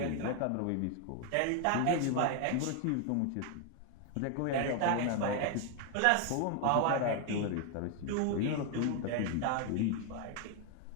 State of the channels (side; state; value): both; different; correlation 0.01